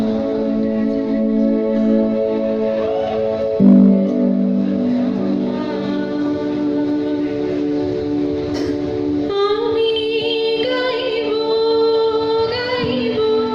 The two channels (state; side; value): identical; both; correlation 1.00